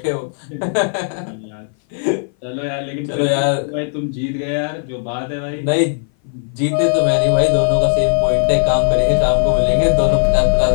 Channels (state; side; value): silent; right; 58 dB below the other